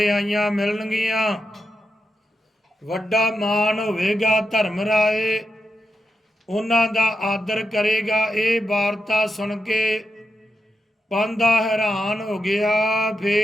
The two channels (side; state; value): both; normal; correlation 0.86